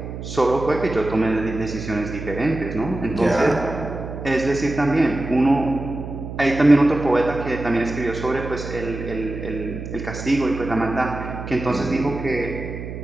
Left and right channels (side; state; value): right; noise; hum, 8 dB below the sound